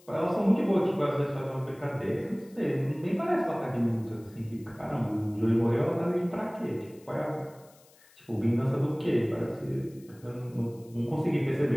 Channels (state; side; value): noise; left; hiss, 28 dB below the sound